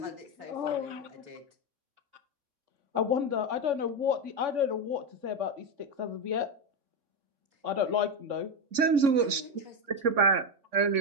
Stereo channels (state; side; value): late; left; 3.5 ms